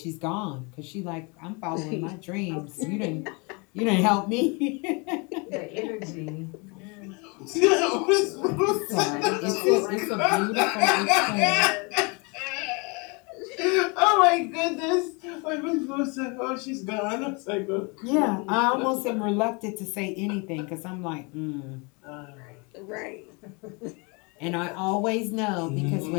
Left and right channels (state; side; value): quieter; right; 30.7 dB